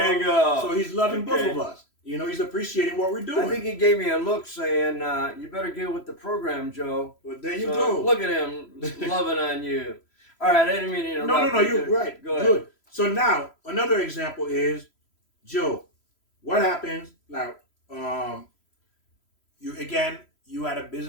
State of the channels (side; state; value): right; late; 3.0 ms